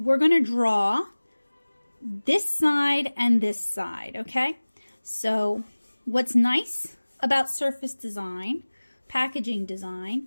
going to draw this side and this side, okay? So what's nice about surface design, packaging design,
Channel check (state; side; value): inverted; both; correlation -1.00